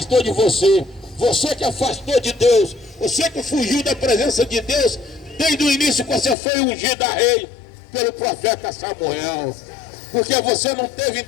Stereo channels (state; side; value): drops out; right; at 6.4 s